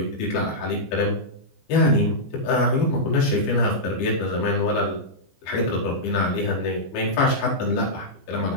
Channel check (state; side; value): late; right; 15 ms